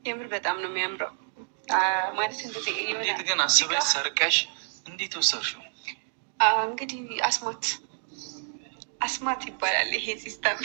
የምር በጣም ነው የሚያምረው። ማለት እንደዚህ እንዴት ግን አስበሽ ሰርቀሽ እንዴት ወሰድሽው? እንግዲህ አስማት ይባላል ይሄ ሲስተም።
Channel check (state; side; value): silent; left; 59 dB below the other